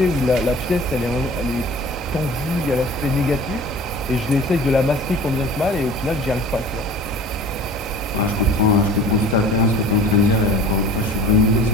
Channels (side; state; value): both; normal; correlation 0.43